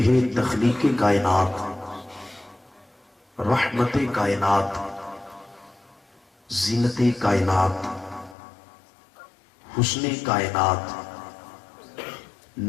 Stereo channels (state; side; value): drops out; right; at 8.3 s